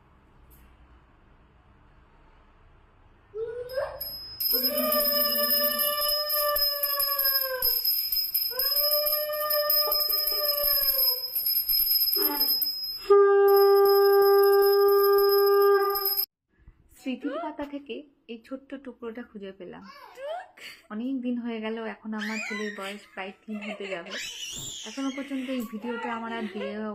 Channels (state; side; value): identical; both; correlation 1.00